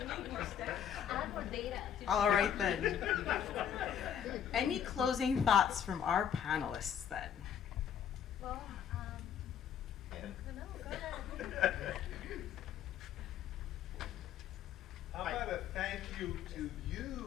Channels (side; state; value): right; quieter; 9.0 dB